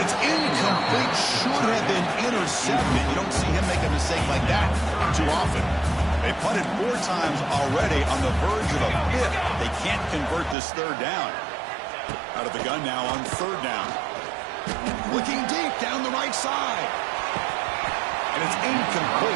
it's incomplete. Should have been intercepted. You don't see him make a mistake like that too often. They punted 4 times already, on the verge of a 5th. They can't convert this third down. Out of the gun now on third down. Looking deep down the right side. And it's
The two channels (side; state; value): left; drops out; at 10.6 s